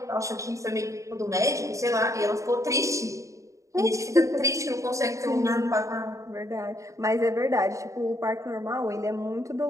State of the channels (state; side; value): late; left; 0.15 ms